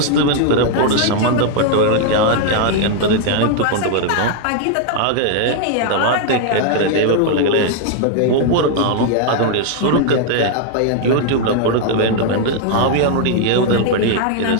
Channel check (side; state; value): both; different; correlation 0.00